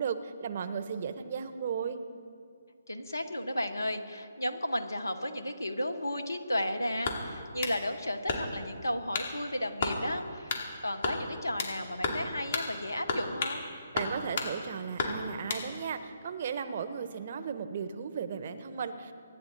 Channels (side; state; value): both; inverted; correlation -0.79